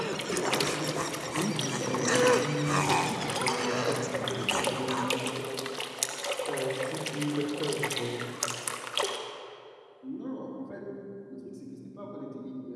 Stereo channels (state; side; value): identical; both; correlation 1.00